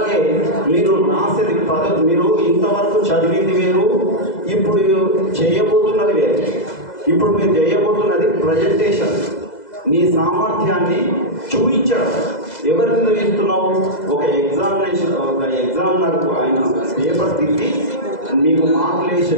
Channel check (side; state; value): right; late; 2.0 ms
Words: మీరు రాసేది పద్ధతి, మీరు ఇంతవరకు చదివింది వేరు, ఇప్పుడు చేయబోతున్నది వేరు. ఇప్పుడు మీరు చేయబోతున్నది ప్రజెంటేషన్, నీ సామర్థ్యాన్ని చూపించడం. ఎవరి మీద ఇస్తున్నావు? ఒక ఎగ్జామినర్కు ఆయన పేపర్ తిట్టి మీకు మార్కులు వేసే